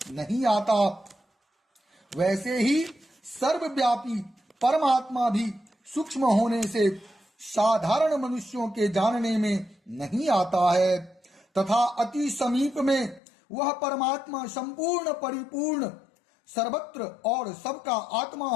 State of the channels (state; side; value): drops out; right; at 13.2 s